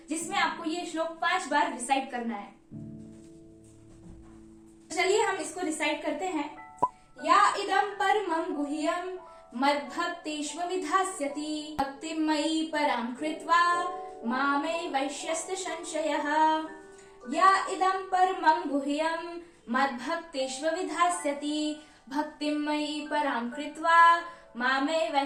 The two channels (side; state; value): both; identical; correlation 1.00